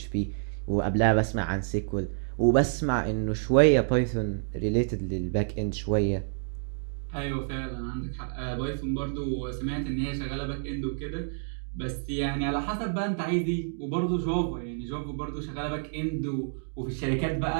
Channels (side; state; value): left; silent; digital silence